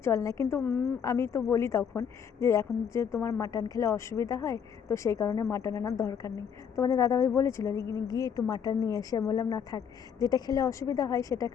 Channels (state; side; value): quieter; right; 7.5 dB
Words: চলে না। কিন্তু আমি তো বলি তখন যে এখন যে তোমার মাটন খেলে অসুবিধা হয়, তো সেই কারণে মাটন আনার দরকার নেই। তোমাদের দাদাভাই বলেছিল যে গিয়ে একটু মাটন নিয়ে এসে, বললাম না থাক, যেটা খেলে অসুবিধা হয় সেটা